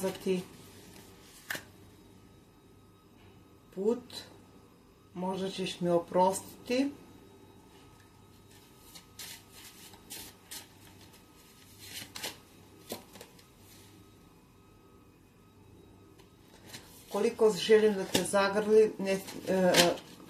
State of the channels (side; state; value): both; identical; correlation 1.00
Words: put. Možda ćeš mi oprostiti. Koliko želim da te zagrli,